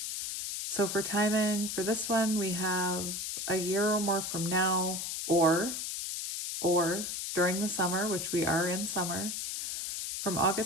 So for timing, for this one, we have a year or more from now, or during the summer, which we are in summer, from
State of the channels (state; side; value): noise; left; hiss, 4 dB below the sound